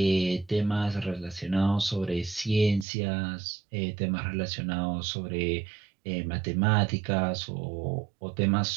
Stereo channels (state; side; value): drops out; left; at 2.9 s